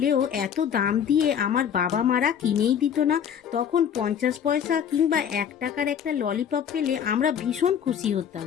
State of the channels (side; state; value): right; quieter; 8.4 dB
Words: এত দাম দিয়ে আমার বাবা মারা কিনেই দিত না। তখন 50 পয়সা কিংবা 1 টাকার একটা ললিপপ পেলে আমরা ভীষণ খুশি হতাম।